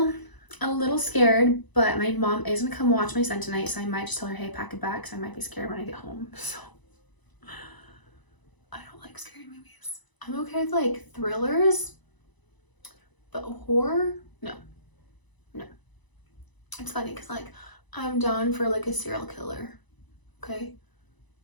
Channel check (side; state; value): right; late; 1.0 ms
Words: scared, but my mom is gonna come watch my son tonight, so I might just tell her, hey, pack it back, because I might be scared when I get home. So I don't like scary movies. I'm okay with like thrillers, but horror, no. It's funny because like I'm down for like a serial killer, okay,